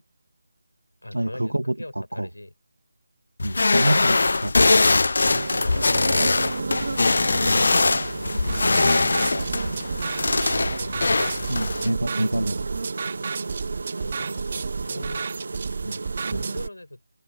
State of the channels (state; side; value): inverted; both; correlation -0.96